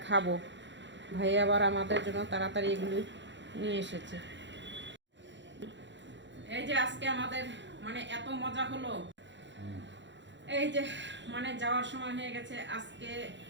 খাবো। ভাই আবার আমাদের জন্য তাড়াতাড়ি এগুলো নিয়ে এসেছে। এই যে আজকে আমাদের মানে এত মজা হলো। এই যে মানে যাওয়ার সময় হয়ে গেছে। আজকে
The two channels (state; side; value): late; left; 0.53 ms